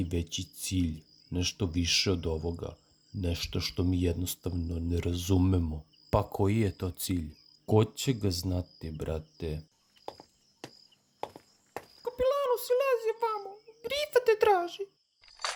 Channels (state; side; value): identical; both; correlation 1.00